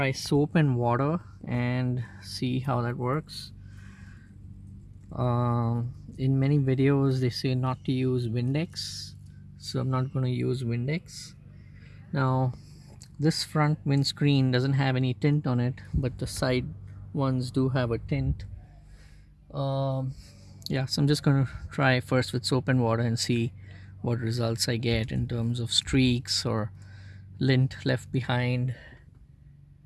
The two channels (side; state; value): both; identical; correlation 1.00